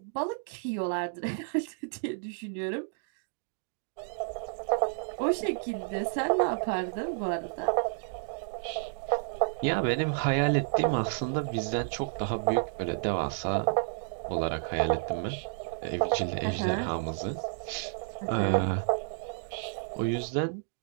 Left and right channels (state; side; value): silent; left; digital silence